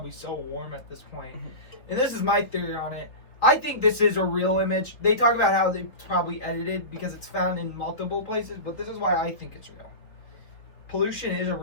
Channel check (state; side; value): late; right; 3.8 ms